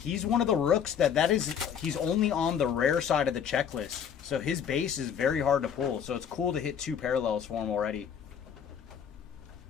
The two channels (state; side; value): quieter; right; 8.0 dB